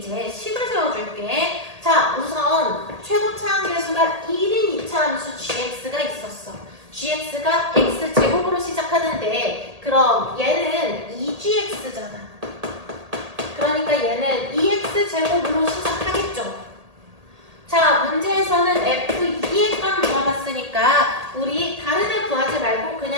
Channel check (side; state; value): left; late; 1.8 ms